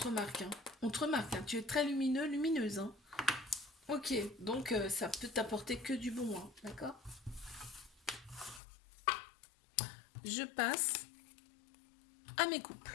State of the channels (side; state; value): right; drops out; at 8.6 s